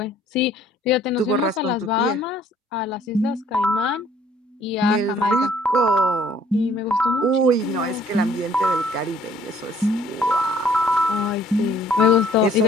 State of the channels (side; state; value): both; normal; correlation 0.59